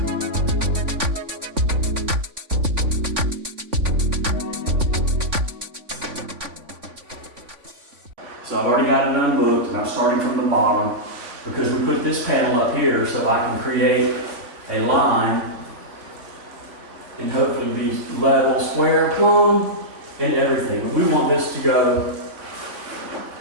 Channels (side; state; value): left; late; 3.5 ms